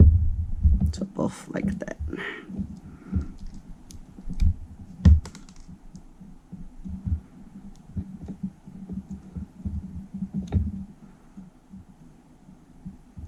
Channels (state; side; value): identical; both; correlation 1.00